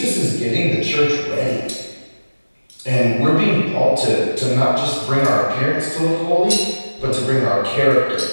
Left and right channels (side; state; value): both; inverted; correlation -1.00